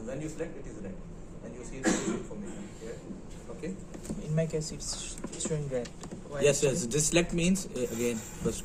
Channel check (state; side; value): identical; both; correlation 1.00